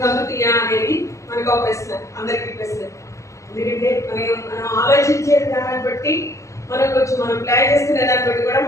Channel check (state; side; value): late; right; 0.15 ms